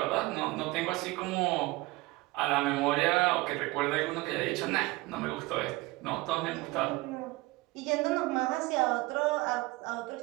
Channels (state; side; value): quieter; left; 21.4 dB